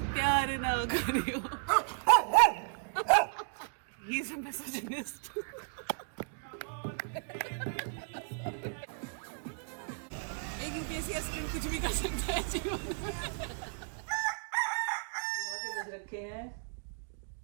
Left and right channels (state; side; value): silent; left; digital silence